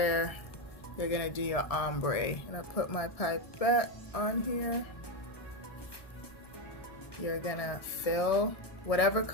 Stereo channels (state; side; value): late; right; 1.7 ms